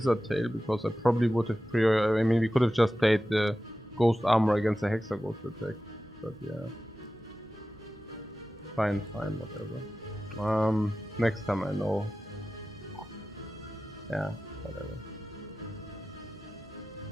Tail, because I probably would have I mean, we could have just played the Ghost Armor against the Hexa Ghost attack. But yeah. Fine, whatever. Next time I know. Yeah, whatever.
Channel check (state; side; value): normal; both; correlation 0.94